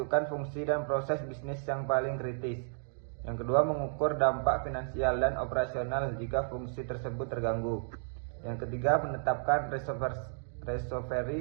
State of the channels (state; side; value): silent; left; digital silence